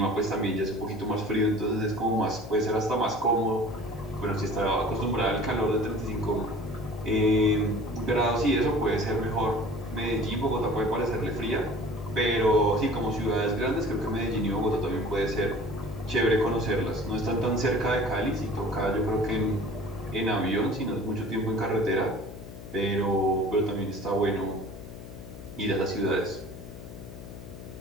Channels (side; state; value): left; noise; hum, 13 dB below the sound